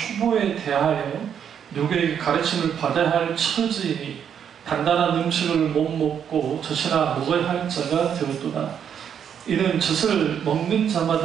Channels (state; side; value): quieter; left; 8.3 dB